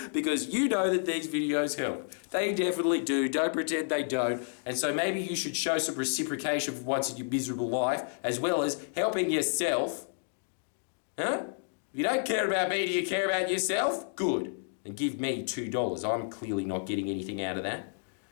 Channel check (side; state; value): right; silent; digital silence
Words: because you know that these videos help. They definitely do. Don't pretend they don't. And so maybe you should show some reciprocation for once in your miserable life, as well as helping yourself. Huh? If you don't care about me, do you care about yourself? Good. And give me $2. I'm clearly not getting anything out of that.